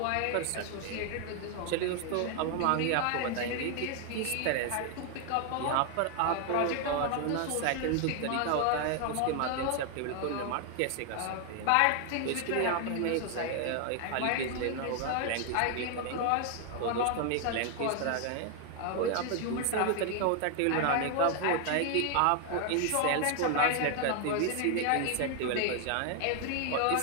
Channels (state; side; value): different; both; correlation 0.00